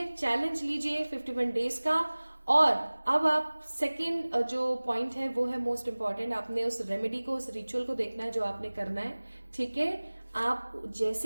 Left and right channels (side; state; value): both; inverted; correlation -1.00